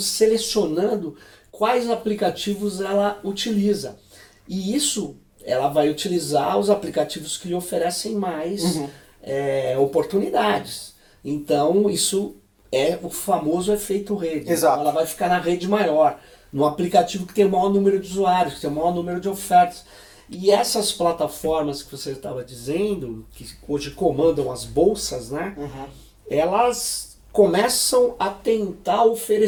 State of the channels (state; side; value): identical; both; correlation 1.00